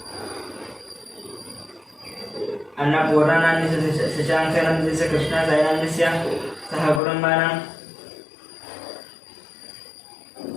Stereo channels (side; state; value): right; drops out; at 7.0 s